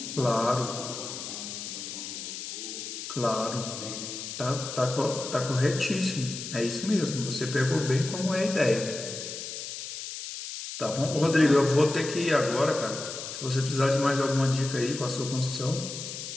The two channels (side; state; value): left; noise; hiss, 8 dB below the sound